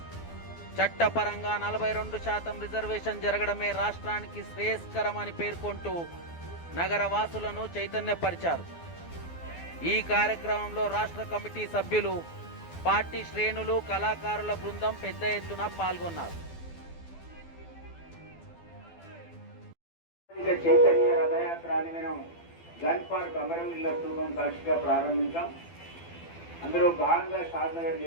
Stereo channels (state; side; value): late; right; 12 ms